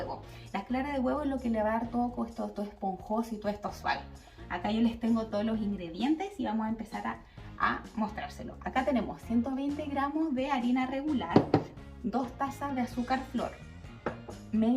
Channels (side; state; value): both; identical; correlation 1.00